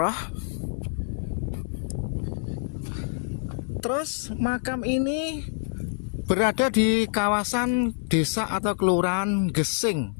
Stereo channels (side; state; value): right; silent; digital silence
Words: Terus makam ini berada di kawasan desa atau kelurahan Gesing.